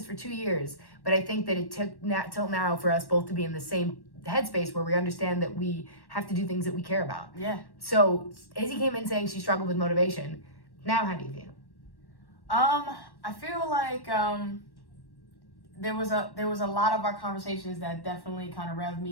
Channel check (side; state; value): right; late; 1.1 ms